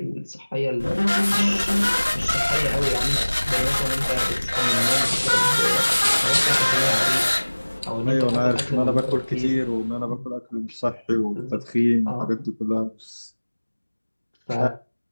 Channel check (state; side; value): inverted; both; correlation -1.00